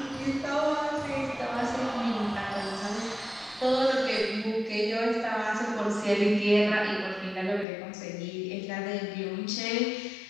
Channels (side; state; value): right; drops out; at 7.7 s